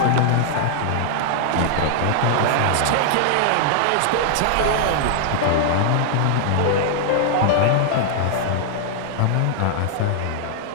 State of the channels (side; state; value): both; different; correlation -0.01